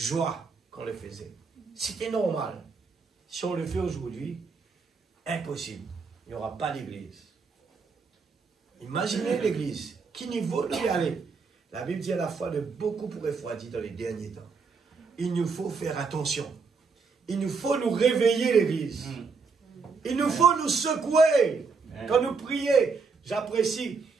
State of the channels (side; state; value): left; quieter; 4.8 dB